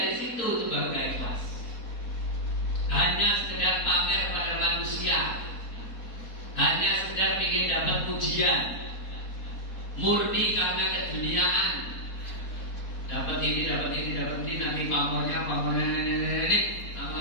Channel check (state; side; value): late; right; 4.2 ms